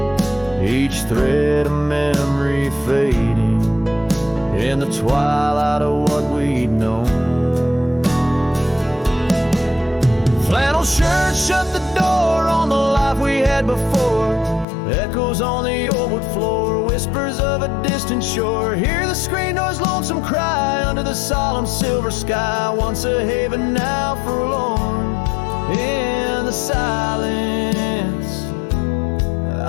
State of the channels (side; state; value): right; drops out; at 14.7 s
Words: each thread a memory fading in the twilight of what we'd known. Flannel shirt shut the door on the life we had before. Echoes on the old wood floor, whispers of a distant shore. Hear the screen door's lonesome cry under the solemn silver sky. Once a haven, now forlorn. In the silence,